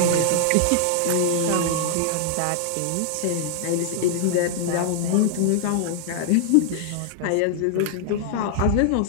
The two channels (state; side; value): different; both; correlation -0.01